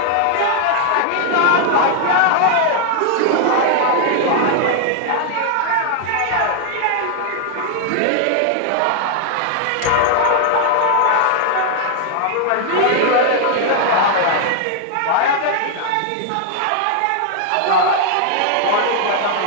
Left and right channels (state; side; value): different; both; correlation 0.00